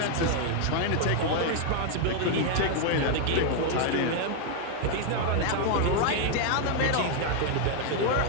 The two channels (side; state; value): both; different; correlation 0.00